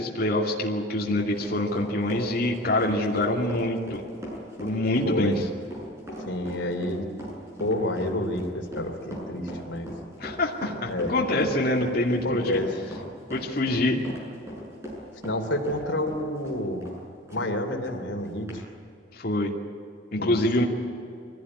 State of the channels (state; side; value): normal; both; correlation 0.34